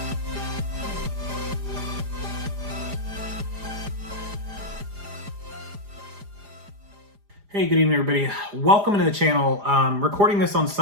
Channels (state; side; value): late; left; 4.9 ms